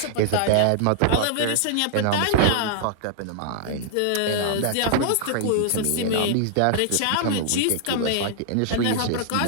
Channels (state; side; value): different; both; correlation -0.01